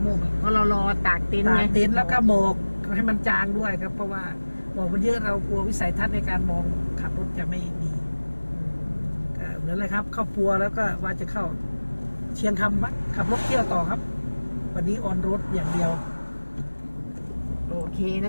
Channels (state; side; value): inverted; both; correlation -1.00